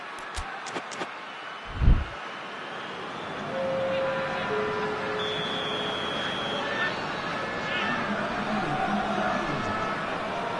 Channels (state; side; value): identical; both; correlation 1.00